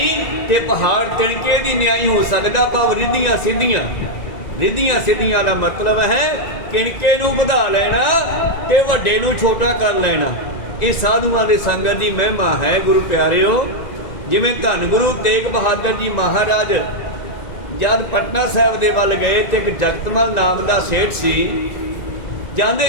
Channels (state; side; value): late; right; 1.9 ms